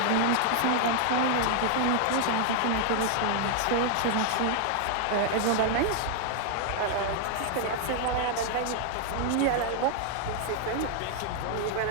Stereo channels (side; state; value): both; different; correlation 0.00